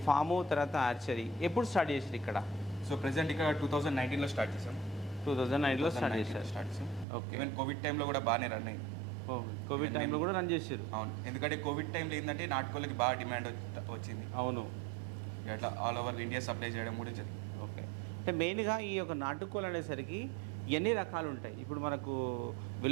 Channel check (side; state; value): left; drops out; at 7.1 s